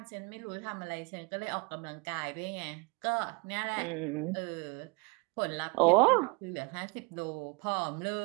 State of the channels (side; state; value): left; quieter; 28.9 dB